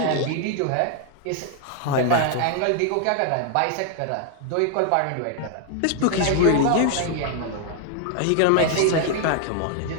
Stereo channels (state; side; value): different; both; correlation 0.00